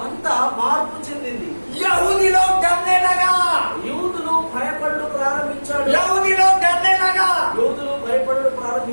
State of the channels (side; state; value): both; inverted; correlation -1.00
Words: అంతా మార్పు చెందింది. यहूदी लोग डरने लगा, యూదులు భయపడు ప్రారంభించాడు. यहूदी लोग डरने लगा। యూదులు భయపడు अरे